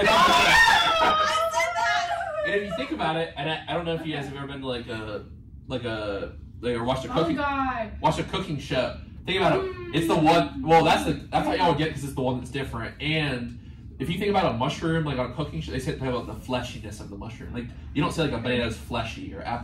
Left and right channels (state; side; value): identical; both; correlation 1.00